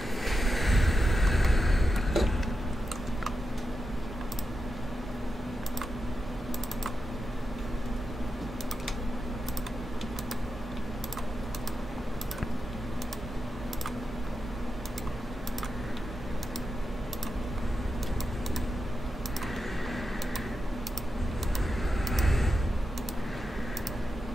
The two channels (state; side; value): normal; both; correlation 0.88